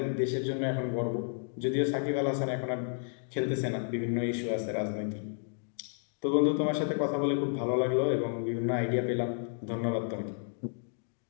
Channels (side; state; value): right; silent; digital silence